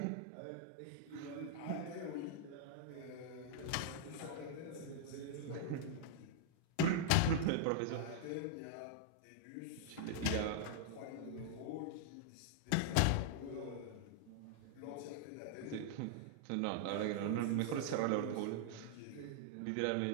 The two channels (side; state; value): both; different; correlation -0.01